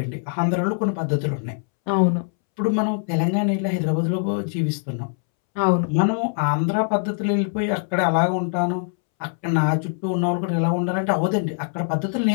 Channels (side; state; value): right; silent; 64 dB below the other